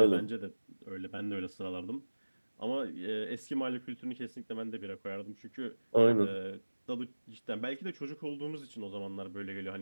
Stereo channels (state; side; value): inverted; both; correlation -1.00